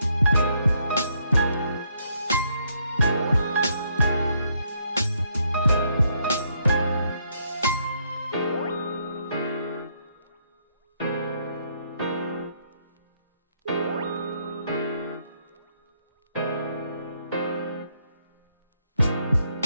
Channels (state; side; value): inverted; both; correlation -0.72